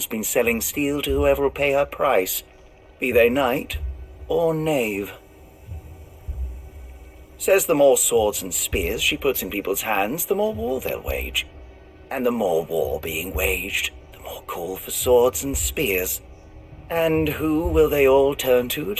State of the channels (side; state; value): both; identical; correlation 1.00